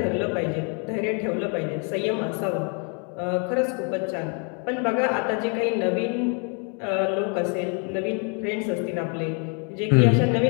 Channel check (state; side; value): quieter; right; 37.7 dB